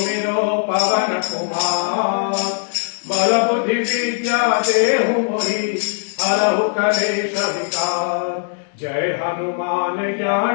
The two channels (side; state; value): right; silent; digital silence